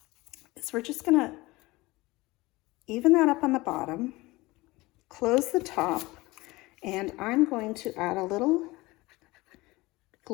is we're just going to even that up on the bottom, close the top, and I'm going to add a little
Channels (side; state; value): right; quieter; 21.1 dB